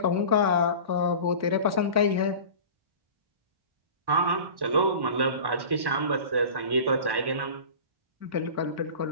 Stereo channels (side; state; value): left; late; 1.1 ms